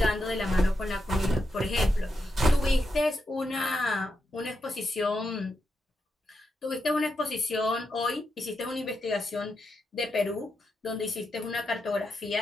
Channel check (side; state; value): both; normal; correlation 0.85